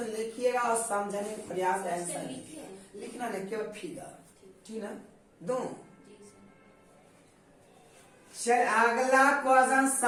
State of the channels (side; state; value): both; identical; correlation 1.00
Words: लिखिएगा और समझने का प्रयास आंसर लिखना नहीं केवल फिगर ठीक ना दो। चल अगला क्वेश्चन